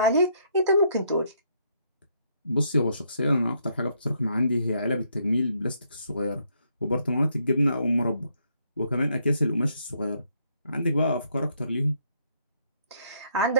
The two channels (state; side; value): inverted; both; correlation -0.72